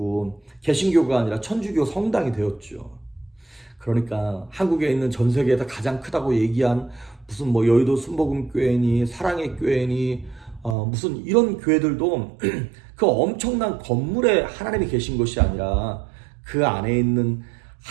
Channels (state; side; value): drops out; left; at 10.8 s